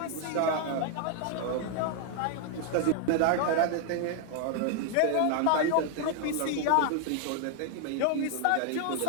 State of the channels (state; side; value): different; both; correlation 0.00